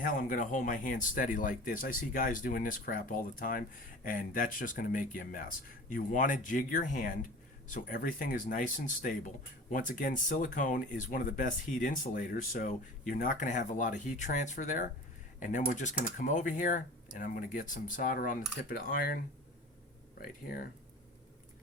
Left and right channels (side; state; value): both; normal; correlation 0.38